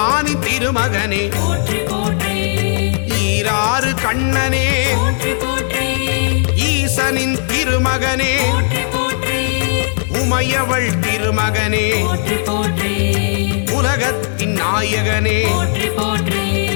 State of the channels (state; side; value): silent; right; digital silence